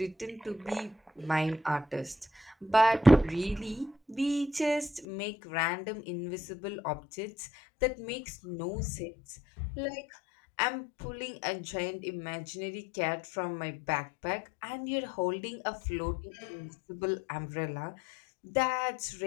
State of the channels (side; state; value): right; drops out; at 5.1 s